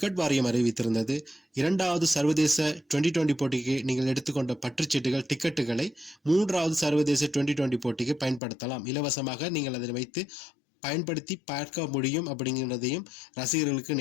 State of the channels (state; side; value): drops out; right; at 8.4 s